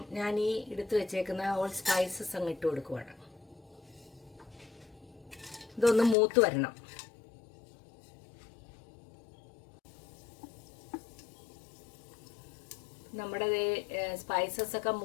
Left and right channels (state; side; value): drops out; right; at 6.2 s